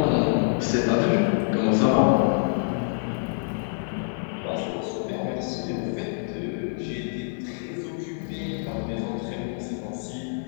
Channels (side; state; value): right; silent; digital silence